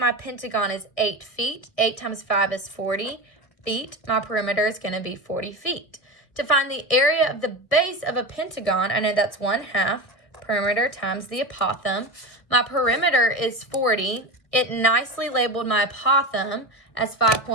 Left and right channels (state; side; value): late; right; 1.6 ms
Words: pentagon is 8 feet. 8 times 5 is 40 feet. My perimeter is going to be 40 feet. To find the area of the base of a pentagon, I know that's 1/2 perimeter times the apothem. My perimeter is 40. It nicely labeled my apothem as